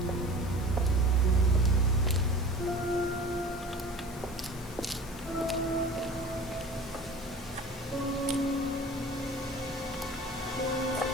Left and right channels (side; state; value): left; noise; hiss, 18 dB below the sound